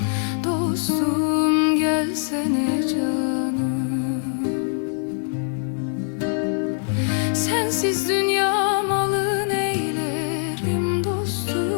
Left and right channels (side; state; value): right; silent; digital silence